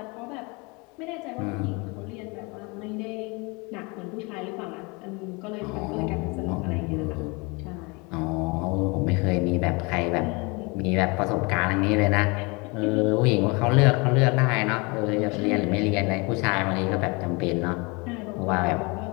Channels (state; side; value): quieter; right; 28.2 dB